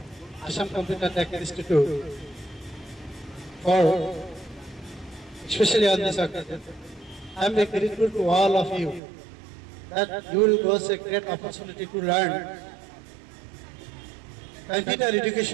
Assam Computer Tech Institute, for especially on this occasion. I am very grateful to all of you that you will get a great opportunity to learn computer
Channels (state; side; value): drops out; left; at 9.0 s